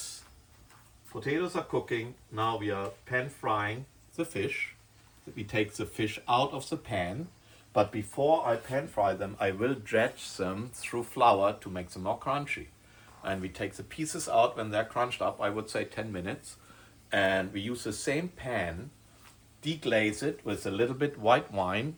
potatoes are cooking. Now we are pan frying the fish. We take the fish out of the pan. But before I pan fry them, I will dredge them through flour to make them more crunchy. And we take the pieces out when they're crunched up, I would say 10 minutes. And we use the same pan, deglaze it with a little bit white wine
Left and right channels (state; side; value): identical; both; correlation 1.00